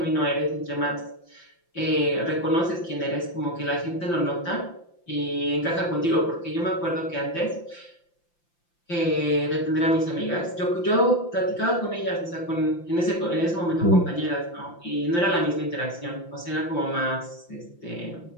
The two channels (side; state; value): right; late; 5.8 ms